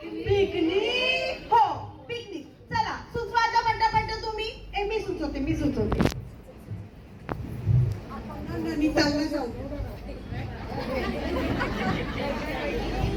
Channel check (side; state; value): both; identical; correlation 1.00